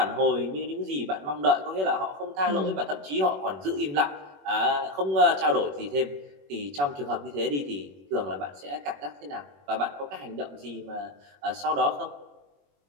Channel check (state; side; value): late; left; 21 ms